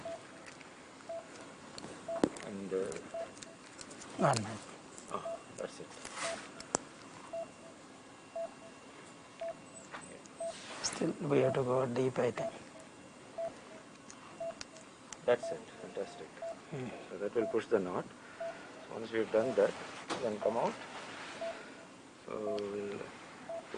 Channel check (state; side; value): identical; both; correlation 1.00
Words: And One minute. that's it. Still we have to go deep, I think. That's it. Fantastic. So that will push the knot. So once you've done that, then come out. So we'll